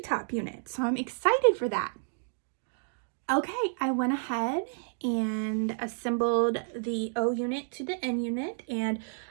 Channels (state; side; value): silent; left; digital silence